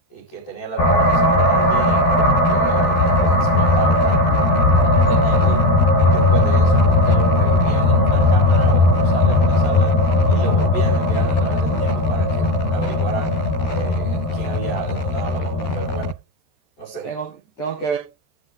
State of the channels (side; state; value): right; late; 14 ms